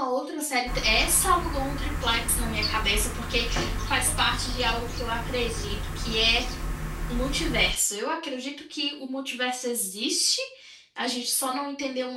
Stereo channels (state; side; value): identical; both; correlation 1.00